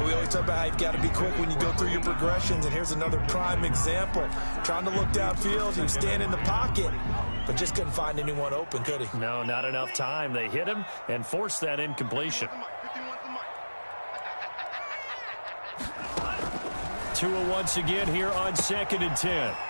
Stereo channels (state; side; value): inverted; both; correlation -1.00